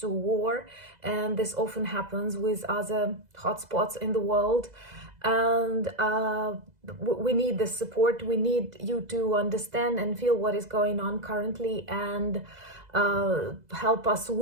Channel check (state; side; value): late; left; 2.0 ms